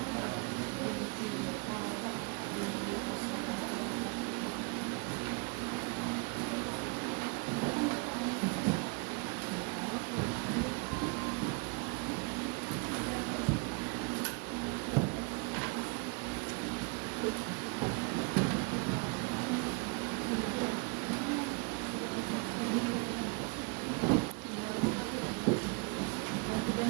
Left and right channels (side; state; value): left; quieter; 33.0 dB